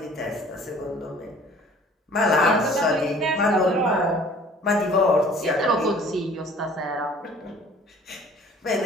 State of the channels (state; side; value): normal; both; correlation 0.50